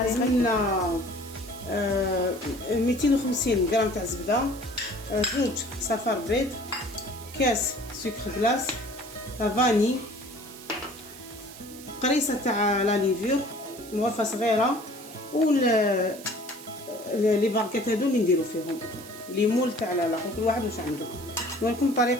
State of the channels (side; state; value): right; noise; hiss, 17 dB below the sound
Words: لازمنا 250 غرام تاع زبده، زوج صفار بيض، كاس سكر غلاس، فاني، قريصه تاع لا ليفور مغرفه صغيره، و لي باركات هادو اللي نديرو فيهم ليمول تاع لاخر، كل واحد واش عنده. نوريكم